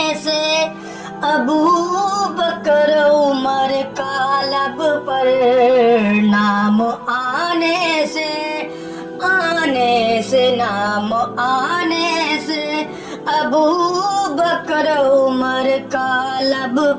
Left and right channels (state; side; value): identical; both; correlation 1.00